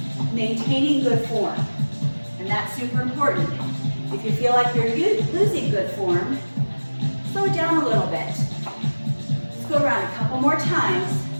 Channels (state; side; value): inverted; both; correlation -1.00